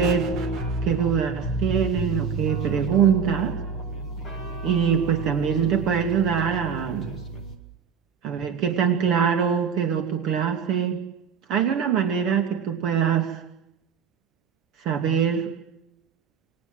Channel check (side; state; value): left; quieter; 6.7 dB